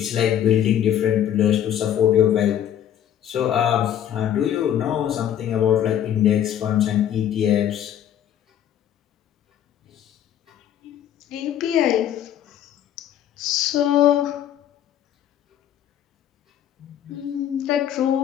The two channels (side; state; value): right; quieter; 10.4 dB